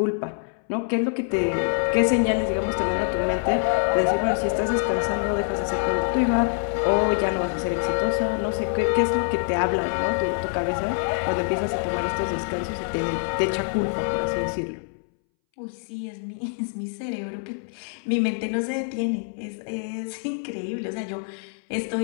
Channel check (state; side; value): silent; right; 62 dB below the other